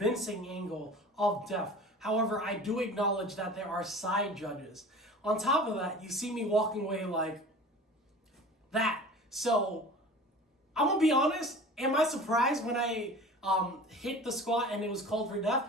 angle of depth. However, I do acknowledge that there are side judges. On top of that, you see me walking away like that. So, I'm going to be honest, am I surprised when I hit the squat and it was called for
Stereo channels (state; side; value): normal; both; correlation 0.40